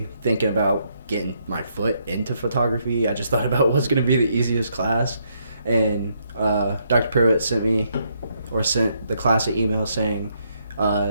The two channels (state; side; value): inverted; both; correlation -0.74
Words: thinking about getting my foot into photography. I just thought about what's going to be the easiest class. And Dr. Pruitt sent the class an email saying,